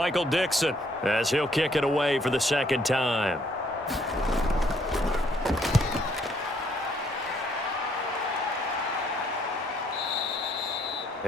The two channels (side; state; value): both; normal; correlation 0.67